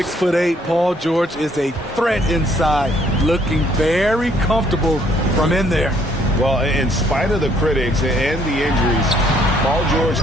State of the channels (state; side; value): normal; both; correlation 0.65